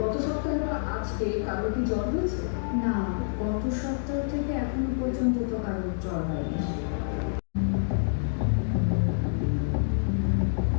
সপ্তাহে বা আজকে কারো কি জ্বর হয়েছে? না, গত সপ্তাহ থেকে এখনো পর্যন্ত তো কারো জ্বর হয়নি।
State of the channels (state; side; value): silent; right; digital silence